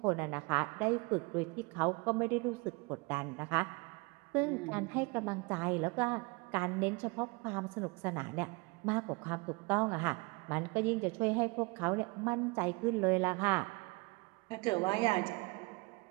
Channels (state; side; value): quieter; left; 28.1 dB